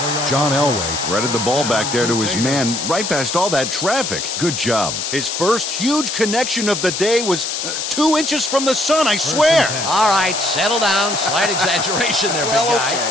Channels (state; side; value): noise; left; hiss, 4 dB below the sound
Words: John Elway threaded the ball back there to his man right past all that traffic. Good job. His first huge connection of the day was 2 inches from the sun, I swear. All right, settle down. Slight exaggeration there, big guy.